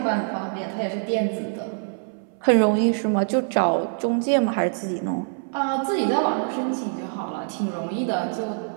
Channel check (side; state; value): left; silent; 62 dB below the other